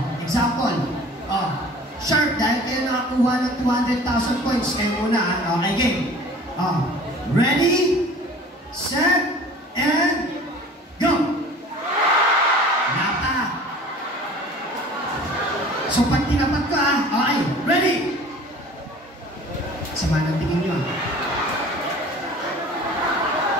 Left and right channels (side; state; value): both; normal; correlation 0.45